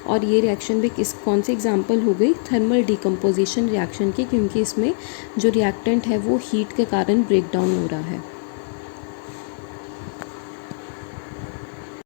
और ये रिएक्शन भी कौन सी एग्जांपल हो गई, थर्मल डिकम्पोजिशन रिएक्शन की, क्योंकि इसमें जो रिएक्टेंट है वो हीट के कारण ब्रेक डाउन हो रहा है.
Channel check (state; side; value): silent; right; digital silence